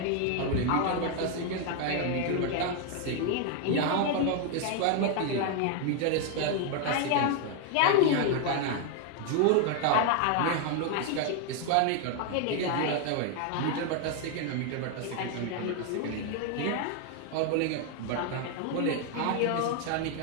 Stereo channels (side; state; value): both; different; correlation 0.01